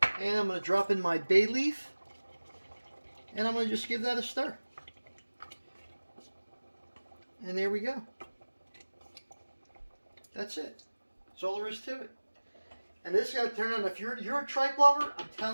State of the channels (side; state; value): both; inverted; correlation -1.00